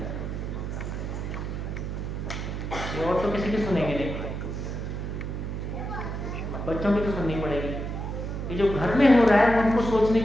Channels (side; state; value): right; noise; hum, 4 dB below the sound